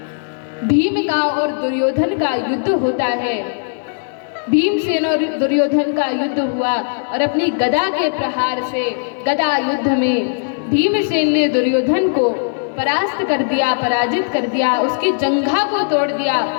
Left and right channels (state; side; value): silent; right; digital silence